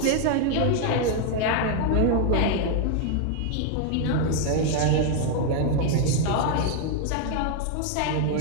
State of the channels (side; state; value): both; different; correlation 0.00